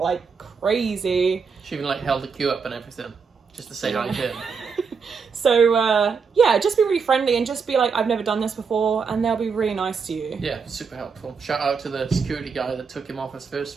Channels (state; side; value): quieter; left; 5.6 dB